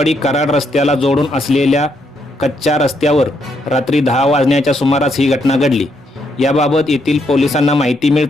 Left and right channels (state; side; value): normal; both; correlation 0.76